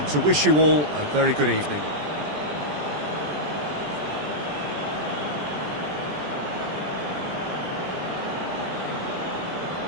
to wish you all a very good evening.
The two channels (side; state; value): left; late; 20 ms